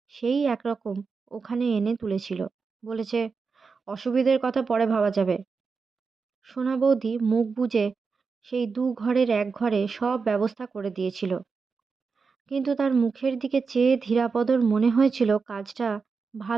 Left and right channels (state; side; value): quieter; left; 5.0 dB